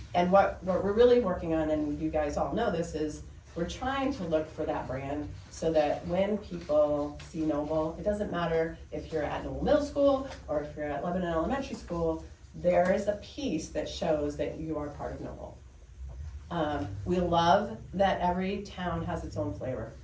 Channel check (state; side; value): identical; both; correlation 1.00